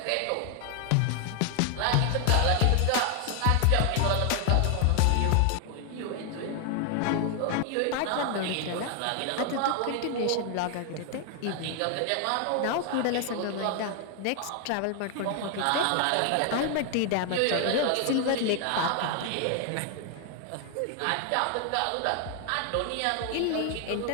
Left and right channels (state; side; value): different; both; correlation 0.00